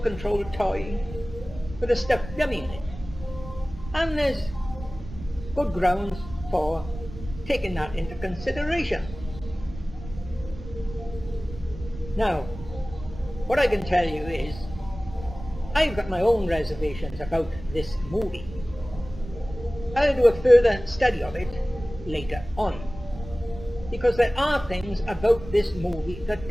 controlled toy with a stuffed dummy in it. And there's good grounds for taking that into consideration. Now, what I can tell you is, I've got my own reservations about this movie. I'll do a further study of it later on, because there are things about this movie that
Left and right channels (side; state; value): right; noise; rumble, 13 dB below the sound